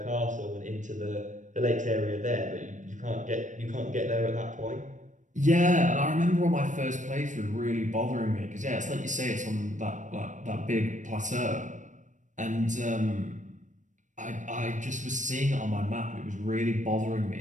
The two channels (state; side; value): late; left; 0.36 ms